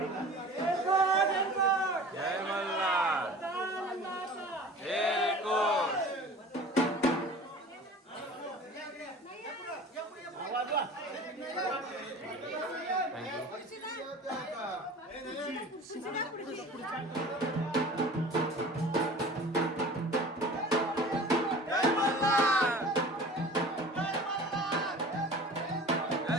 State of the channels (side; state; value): both; normal; correlation 0.41